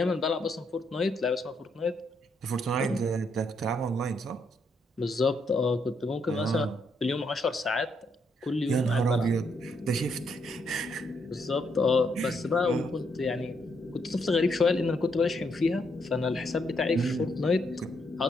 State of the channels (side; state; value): both; normal; correlation 0.76